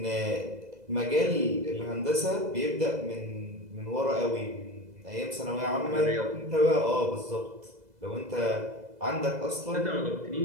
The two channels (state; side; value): late; left; 2.0 ms